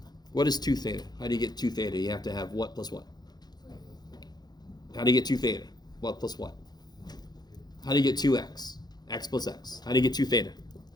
What is 2 theta? How do you get 2 theta? You have to have what plus what? How do you get 2 theta? What plus what? How do you get 2x? X plus x. How do you get 2 theta?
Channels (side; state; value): right; late; 0.20 ms